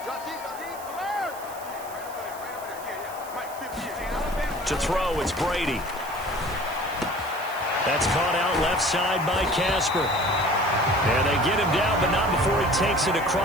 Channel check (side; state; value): right; noise; hiss, 17 dB below the sound